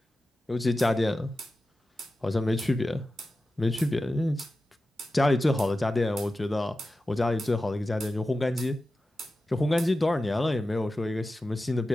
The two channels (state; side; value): normal; both; correlation 0.93